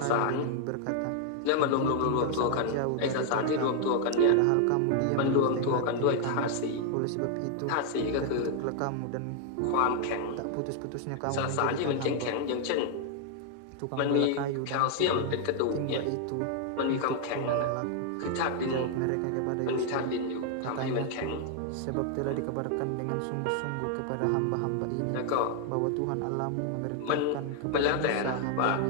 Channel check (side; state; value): both; different; correlation 0.00